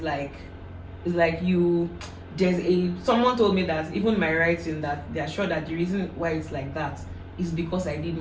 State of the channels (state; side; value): identical; both; correlation 1.00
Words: like someone told me that even my writing, that they are sure that the reason why it's like that is because I did